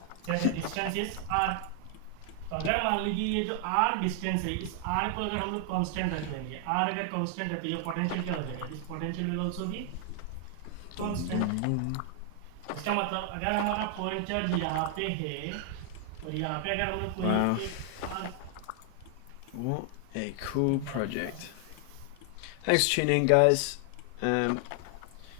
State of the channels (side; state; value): both; different; correlation 0.00